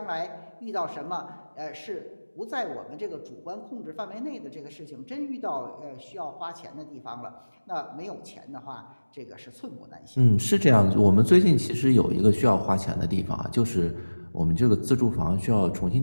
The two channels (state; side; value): inverted; both; correlation -1.00